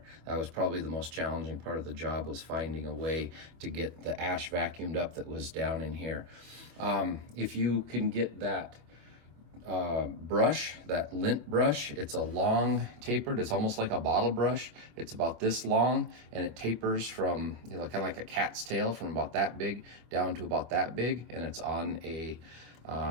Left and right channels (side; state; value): left; late; 24 ms